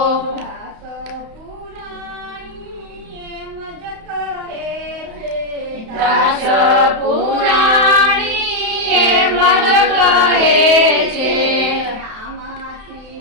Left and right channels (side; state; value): left; late; 31 ms